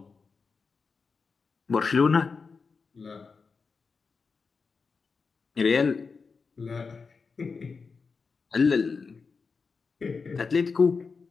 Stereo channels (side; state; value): right; quieter; 4.9 dB